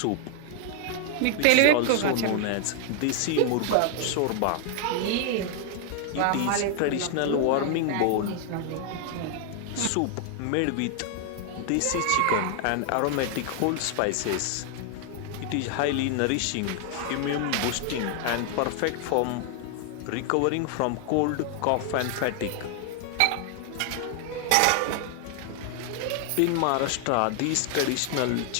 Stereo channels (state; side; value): different; both; correlation 0.00